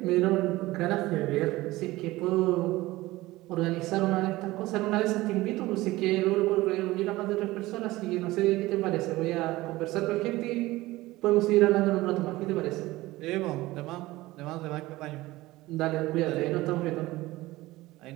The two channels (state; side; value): quieter; left; 18.6 dB